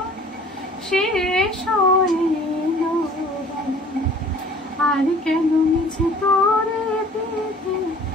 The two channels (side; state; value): both; normal; correlation 0.51